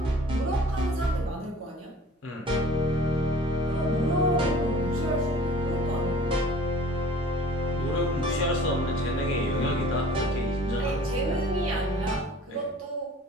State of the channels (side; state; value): both; normal; correlation 0.47